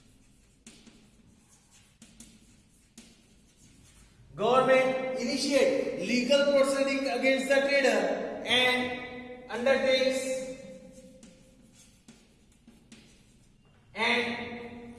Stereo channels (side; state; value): both; identical; correlation 1.00